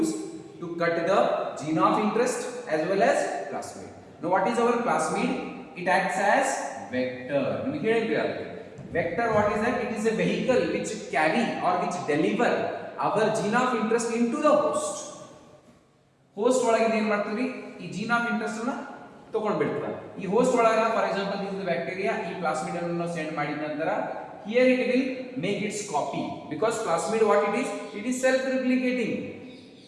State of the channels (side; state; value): both; identical; correlation 1.00